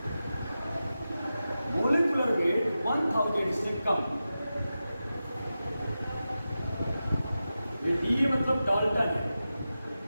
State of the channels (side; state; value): both; inverted; correlation -0.92